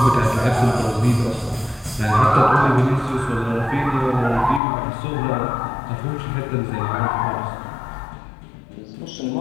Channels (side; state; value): right; drops out; at 4.6 s